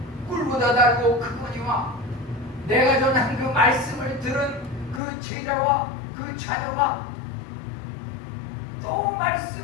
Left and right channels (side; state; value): right; drops out; at 5.0 s